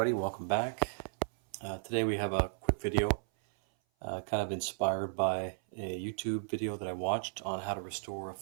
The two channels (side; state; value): left; silent; 55 dB below the other